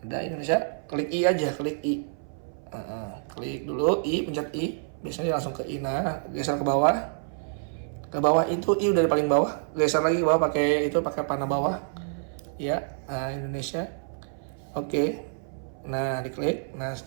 Ada Indonesia, klik I aja, klik I. Klik dulu I, pencet I. Biasanya langsung ke I. Nah geser ke bawah. Ke bawah itu I udah di paling bawah. Geser lagi ke bawah pakai panah bawah. Ya Indonesia. Oke. Nah diklik, nah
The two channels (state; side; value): silent; left; 58 dB below the other